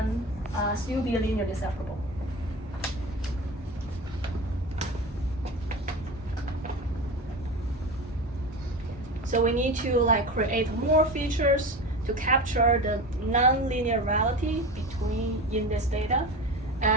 still be linearly separable. So we need to like create more features to capture the non-linear reality in this data,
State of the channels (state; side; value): normal; both; correlation 0.29